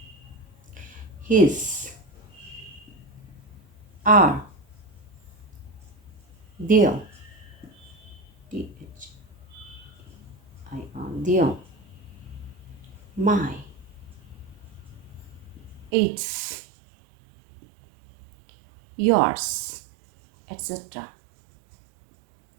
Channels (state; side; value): drops out; left; at 15.9 s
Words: his, our, their, their, my, its, yours, etc.